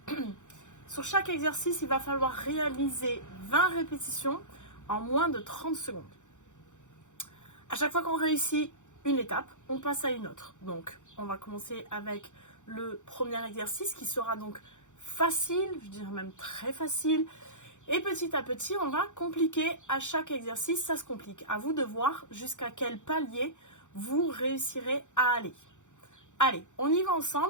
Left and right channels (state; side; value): late; right; 0.85 ms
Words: Sur chaque exercice, il va falloir réaliser 20 répétitions en moins de 30 secondes. À chaque fois qu'on réussit une étape, on passe à une autre. Donc, on va commencer avec le premier exercice qui sera donc facile, je dirais même très facile. Et petit à petit, on va compliquer à chaque exercice, ça se complique. À vous de voir jusqu'à quel palier vous réussirez à aller. Allez, on y va